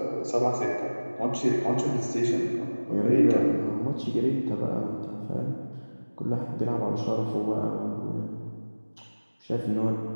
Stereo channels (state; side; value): inverted; both; correlation -1.00